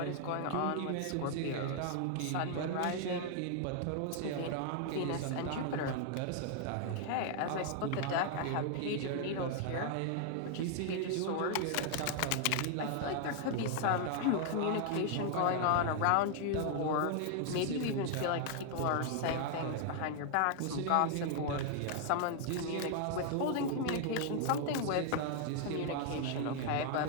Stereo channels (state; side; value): different; both; correlation 0.00